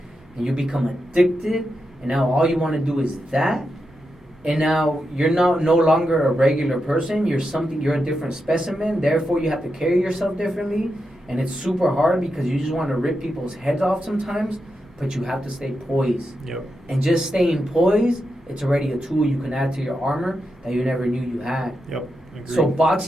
and you become addicted, and now all you want to do is that. And now you're no longer a regular person. You're a different specimen. Therefore, you have to carry yourself differently. And it's super hard, because you just want to rip people's heads off sometimes, but you have to stay poised. Yep. And just staying poised, it's already a tool you can add to your armor that you never knew you had. Yep. Agreed. So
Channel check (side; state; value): both; normal; correlation 0.87